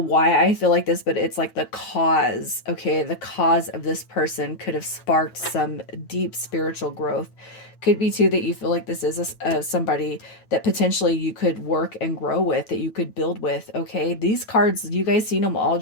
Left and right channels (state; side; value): late; right; 9.1 ms